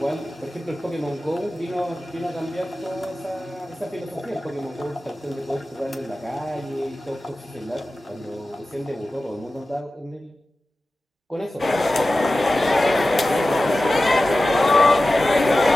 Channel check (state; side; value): normal; both; correlation 0.95